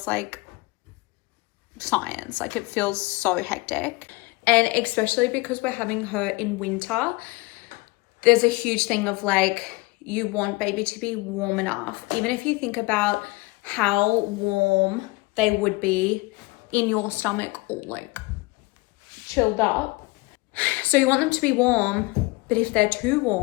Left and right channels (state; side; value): quieter; right; 24.2 dB